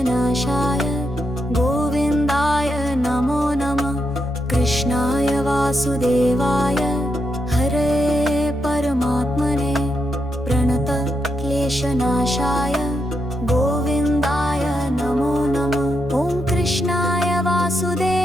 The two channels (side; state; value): both; normal; correlation 0.83